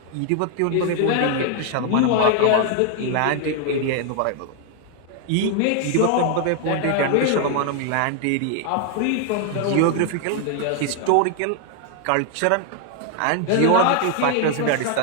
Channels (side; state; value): both; different; correlation 0.00